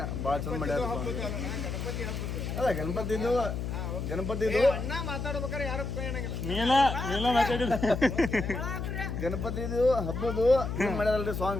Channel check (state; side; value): noise; left; hum, 4 dB below the sound